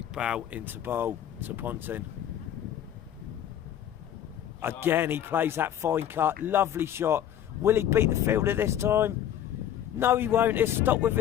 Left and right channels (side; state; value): right; quieter; 10.6 dB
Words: into bowl to Ponting. Again, he plays that fine cut. Lovely shot. Will he beat the fielder this time? No, he won't. He'll stop with